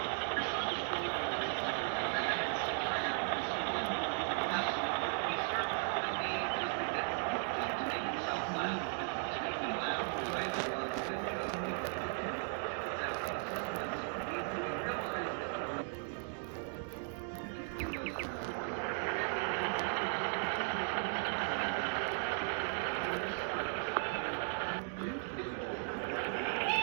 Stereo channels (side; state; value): left; silent; 53 dB below the other